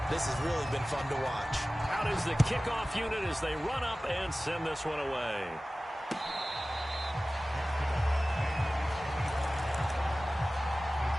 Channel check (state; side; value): normal; both; correlation 0.97